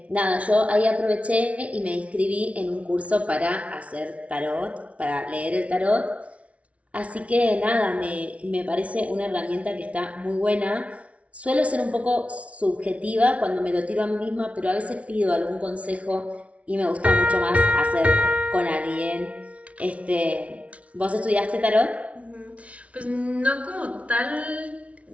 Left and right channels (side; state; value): left; late; 0.064 ms